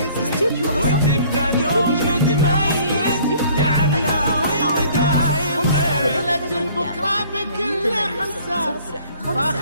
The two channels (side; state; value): both; inverted; correlation -0.55